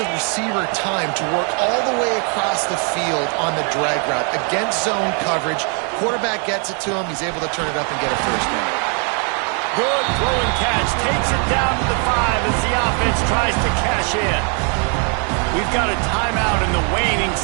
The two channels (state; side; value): quieter; left; 39.2 dB